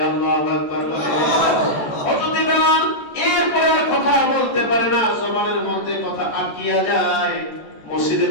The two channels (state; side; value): late; right; 14 ms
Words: আল্লাহু আকবার বলে। হযরত বেলাল এরপরে আর কথা বলতে পারে না, জবানের মধ্যে কথা আটকিয়া যায়। মসজিদে